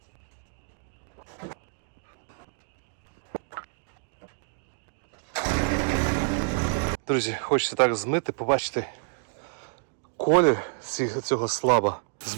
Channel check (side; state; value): left; silent; digital silence